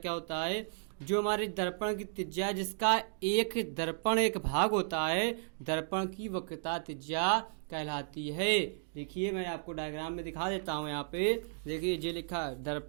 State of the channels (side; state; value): left; silent; digital silence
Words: होता है। जो हमारे दर्पण की त्रिज्या जिसका एक दर्पण एक भाग होता है, दर्पण की वक्रता त्रिज्या कहलाती है। देखिए मैं आपको डायग्राम में दिखा देता हूँ। यहाँ पे देखिए ये लिखा है,